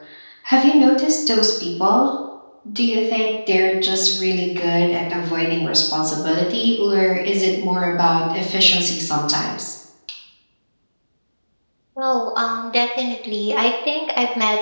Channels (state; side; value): inverted; both; correlation -1.00